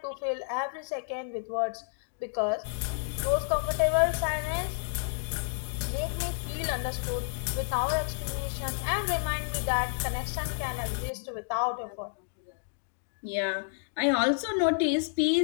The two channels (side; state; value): right; silent; digital silence